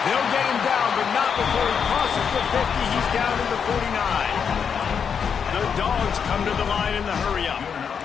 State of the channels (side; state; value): right; quieter; 6.9 dB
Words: get him down, but not before he crosses the 50. He's down to the 49. The Dogs come to the line in the hurry-up.